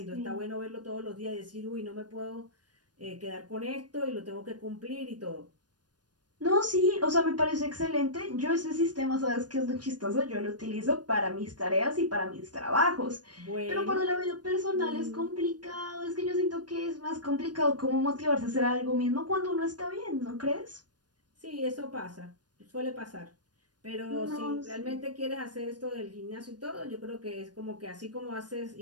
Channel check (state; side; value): late; left; 0.69 ms